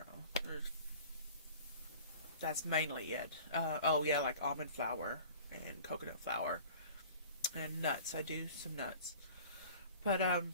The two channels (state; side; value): inverted; both; correlation -0.43